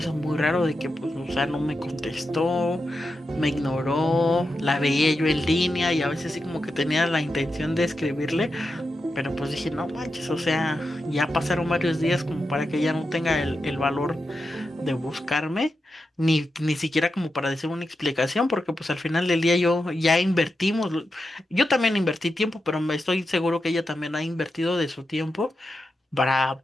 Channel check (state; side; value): normal; both; correlation 0.88